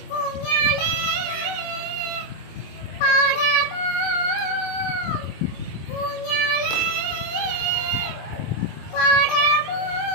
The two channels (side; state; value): right; late; 25 ms